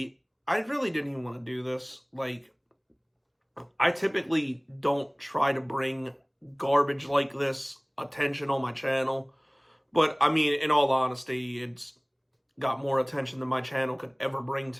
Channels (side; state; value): both; identical; correlation 1.00